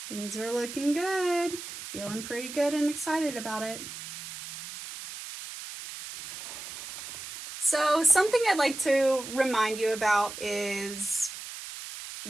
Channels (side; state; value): right; noise; hiss, 10 dB below the sound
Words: Things are looking good. Feeling pretty good and excited about it. So something I'd like to remind you about is